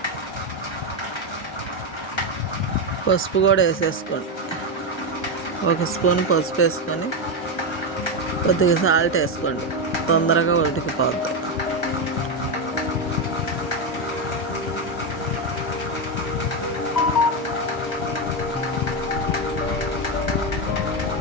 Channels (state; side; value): normal; both; correlation 0.08